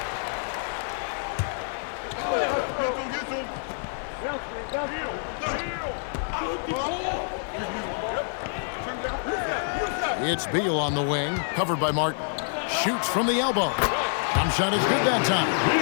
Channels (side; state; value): right; silent; digital silence